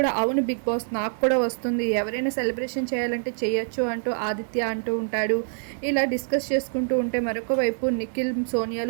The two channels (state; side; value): silent; left; digital silence